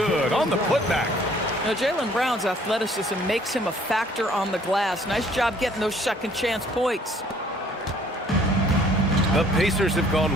on the putback. Now, Jaylen Brown's athleticism makes him a factor on the glass. Nice job getting those second chance points. The Pacers have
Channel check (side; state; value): both; normal; correlation 0.59